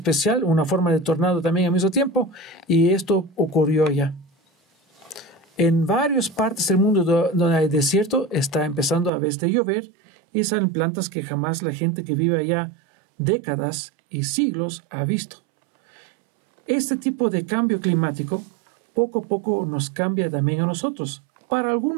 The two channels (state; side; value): drops out; left; at 9.1 s